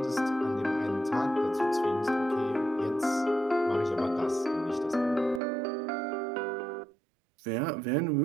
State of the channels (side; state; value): left; drops out; at 5.4 s